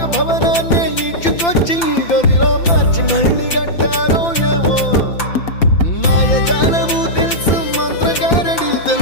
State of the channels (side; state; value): right; late; 5.9 ms